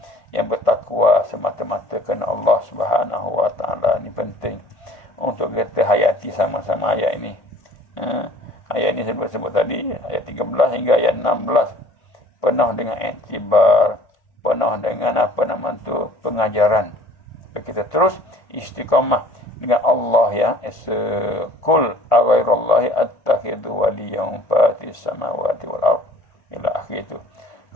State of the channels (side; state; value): right; late; 1.5 ms